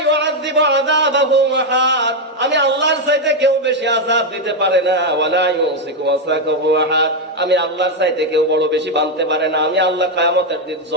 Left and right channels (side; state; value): both; normal; correlation 0.03